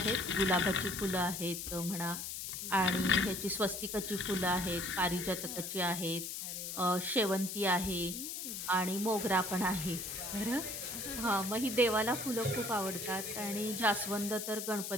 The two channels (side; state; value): left; noise; hiss, 5 dB below the sound